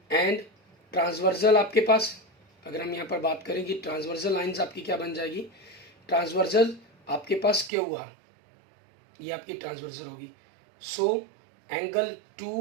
एंड ट्रांसवर्सल आपके पास, अगर हम यहाँ पर बात करें कि ट्रांसवर्सल लाइंस आपकी क्या बन जाएगी, ट्रांसवर्सल आपके पास क्यू आर, ये आपकी ट्रांसवर्सल होगी। So angle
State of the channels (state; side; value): drops out; left; at 7.7 s